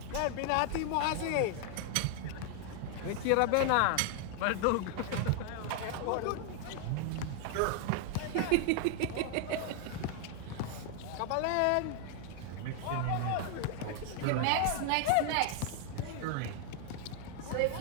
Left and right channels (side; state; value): both; different; correlation 0.00